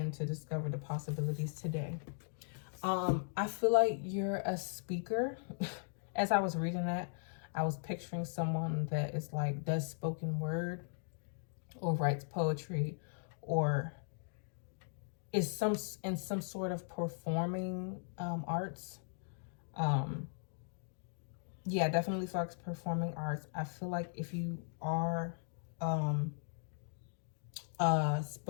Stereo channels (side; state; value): right; silent; digital silence